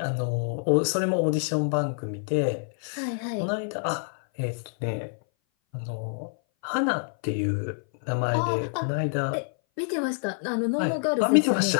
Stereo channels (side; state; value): right; silent; 58 dB below the other